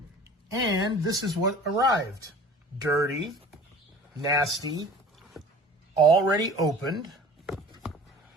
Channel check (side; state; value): both; normal; correlation 0.44